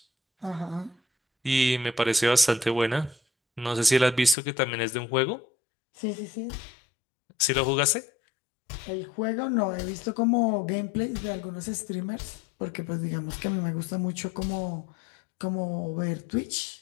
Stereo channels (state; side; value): drops out; right; at 4.4 s